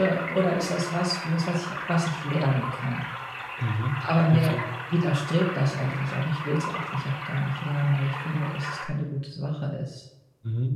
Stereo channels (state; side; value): identical; both; correlation 1.00